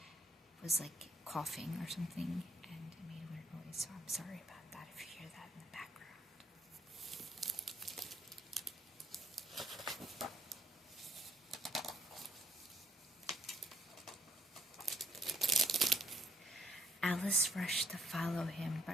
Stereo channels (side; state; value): both; normal; correlation 0.69